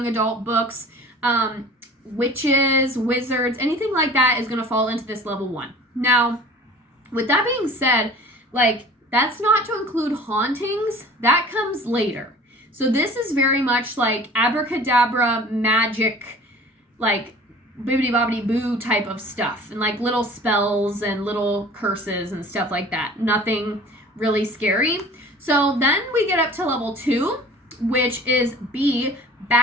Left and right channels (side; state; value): both; normal; correlation 0.44